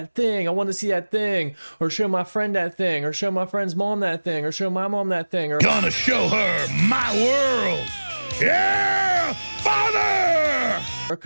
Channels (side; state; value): both; inverted; correlation -1.00